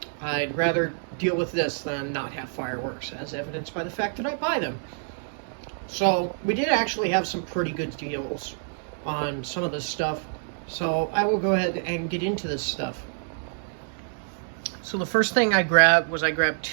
I'd rather deal with this than not have fireworks, as evidenced by the fact that I buy them. So we did actually have some pretty good deals on some of this stuff. So I will go ahead and get into this stuff. So the first thing I grabbed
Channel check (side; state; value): left; silent; digital silence